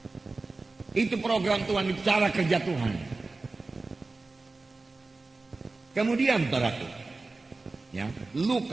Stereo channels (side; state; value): left; quieter; 3.5 dB